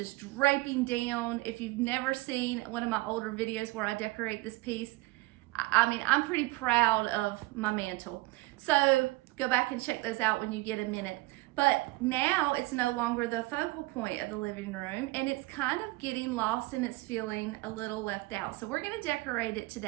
draping down. If you've never seen one of my older videos where I decorate this piece, I'm pretty proud of my mantle. So go back and check those out when you get a minute. But now it's no longer the focal point of the living room, and it's kind of getting lost and it's feeling a little left out. So we're gonna decorate it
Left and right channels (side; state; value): left; quieter; 22.0 dB